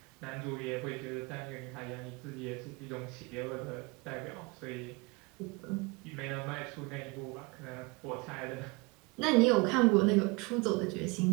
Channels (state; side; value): quieter; left; 26.8 dB